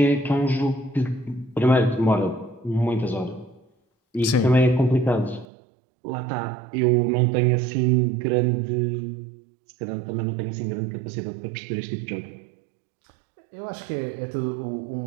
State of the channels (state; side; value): drops out; left; at 5.5 s